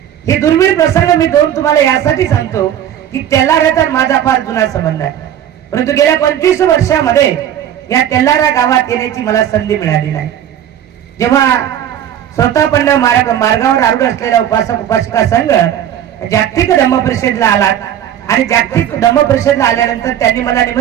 हे दुर्मिळ प्रसंग मी दोन तुम्हाला यासाठी सांगतो की तेल्लाऱ्याचा माझा फार जुना संबंध आहे. परंतु गेल्या 25 वर्षामध्ये या तेल्लारा गावात येण्याची मला संधी मिळाली नाही. जेव्हा स्वतःपण्य मार्गावर आरूढ असलेला उपासक उपासिका संघ जागतिक धम्म परिषदेला आला आणि जागतिक धम्म परिषदेला आल्यानंतर त्यांनी मला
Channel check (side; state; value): left; quieter; 10.5 dB